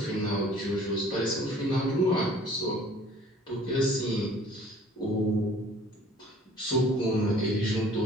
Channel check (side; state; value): both; normal; correlation 0.52